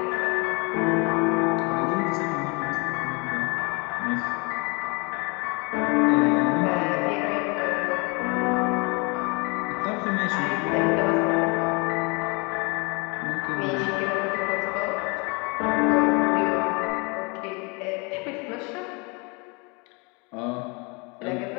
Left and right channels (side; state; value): right; quieter; 30.1 dB